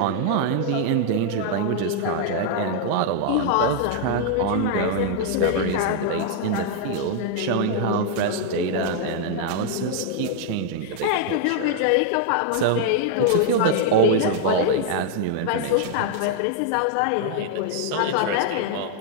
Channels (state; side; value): different; both; correlation 0.00